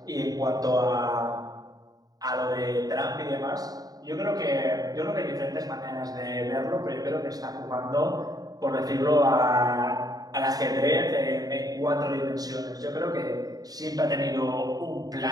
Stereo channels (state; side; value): late; left; 0.18 ms